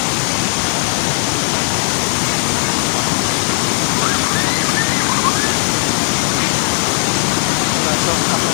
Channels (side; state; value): right; silent; 63 dB below the other